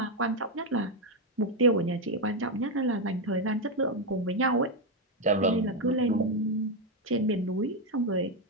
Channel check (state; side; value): normal; both; correlation 0.05